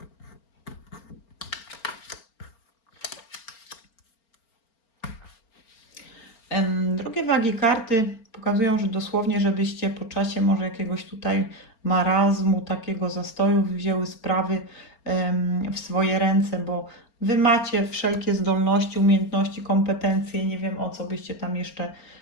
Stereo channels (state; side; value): late; right; 4.4 ms